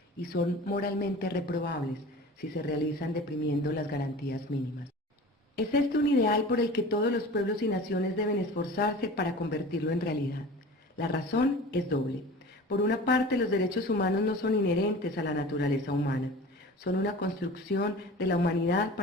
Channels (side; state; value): both; normal; correlation 0.38